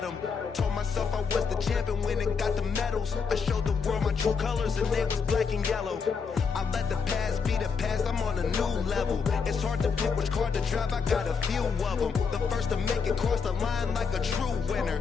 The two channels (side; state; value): right; quieter; 5.6 dB